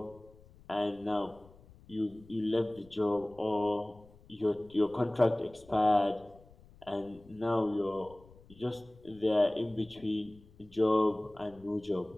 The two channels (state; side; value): noise; left; rumble, 24 dB below the sound